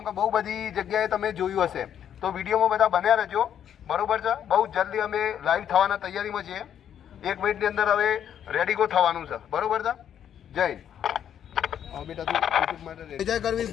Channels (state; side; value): quieter; right; 9.5 dB